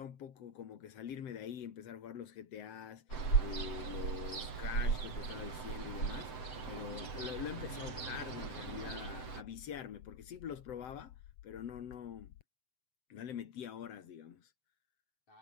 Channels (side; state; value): right; late; 7.8 ms